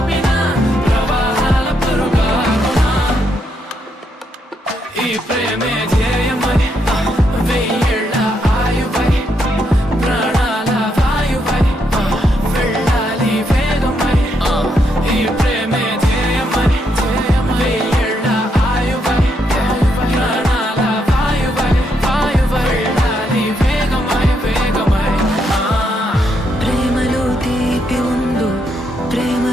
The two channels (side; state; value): both; normal; correlation 0.78